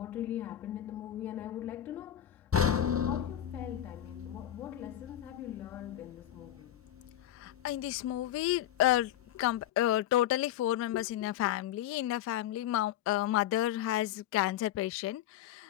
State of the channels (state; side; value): quieter; right; 12.1 dB